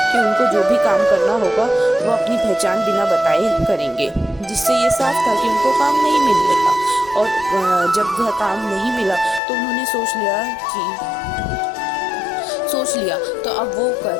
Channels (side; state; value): right; drops out; at 9.4 s